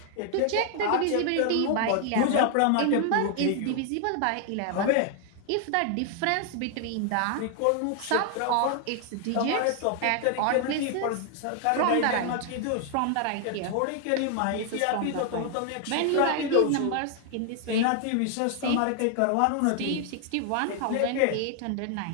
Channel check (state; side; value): different; both; correlation 0.00